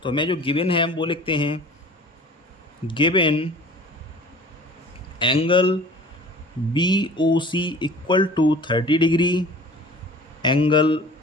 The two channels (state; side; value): normal; both; correlation 0.45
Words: तो हमें जो गिवन है हम वो लिखते हैं, given angle BOC equal to 30 degree, angle